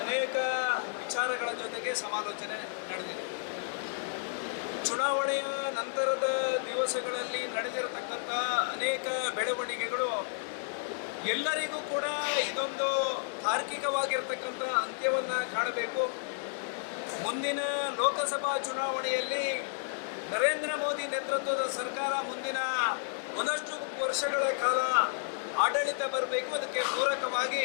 ಅನೇಕ ವಿಚಾರಗಳ ಜೊತೆಗೆ ಸಮಾಲೋಚನೆ ನಡೆದಿದೆ. ಚುನಾವಣೆಯ ನಂತರದ ದಿವಸಗಳಲ್ಲಿ ನಡೆದಿರತಕ್ಕಂಥ ಅನೇಕ ಬೆಳವಣಿಗೆಗಳು ಎಲ್ಲರಿಗೂ ಕೂಡ ಇದೊಂದು ತಾರ್ಕಿಕವಾಗಿರ್ತಕ್ಕಂಥ ಅಂತ್ಯವನ್ನು ಕಾಣಬೇಕು. ಮುಂದಿನ ಲೋಕಸಭಾ ಚುನಾವಣೆಯಲ್ಲಿ ನರೇಂದ್ರ ಮೋದಿ ನೇತೃತ್ವದ ಸರ್ಕಾರ ಮುಂದಿನ ಒಂದಷ್ಟು ವರ್ಷಗಳ ಕಾಲ ಆಡಳಿತ ಬರಬೇಕು. ಅದಕ್ಕೆ ಪೂರಕವಾಗಿ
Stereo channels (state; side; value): silent; right; digital silence